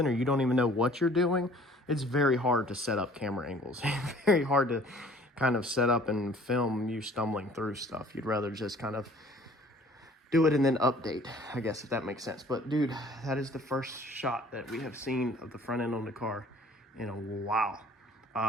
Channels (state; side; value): normal; both; correlation 0.53